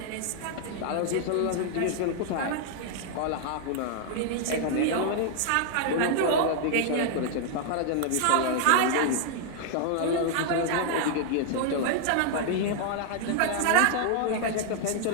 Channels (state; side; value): different; both; correlation 0.00